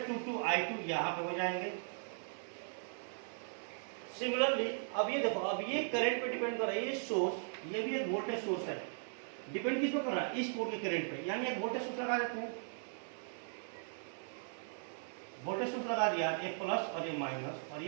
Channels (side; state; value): left; silent; 52 dB below the other